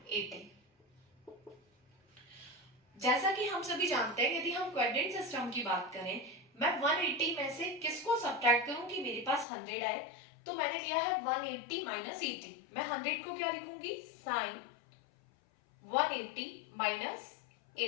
80। जैसा कि हम सभी जानते हैं यदि हम क्वाड्रेंट सिस्टम की बात करें, मैं 180 में से किसको सब्ट्रैक्ट करूं कि मेरे पास 100 आए, तो मैंने लिया है 180 माइनस 80। मैं 100 को क्या लिखूंगी, साइन 180 माइनस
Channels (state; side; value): drops out; right; at 9.5 s